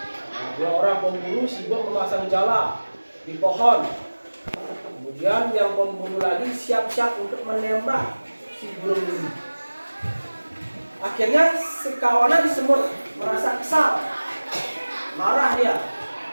2 orang pemburu sibuk memasang jala di pohon. Kemudian yang pemburu lagi siap-siap untuk menembak si burung nuri. Akhirnya sekawanan semut merasa kesal, marah dia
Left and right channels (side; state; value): both; inverted; correlation -1.00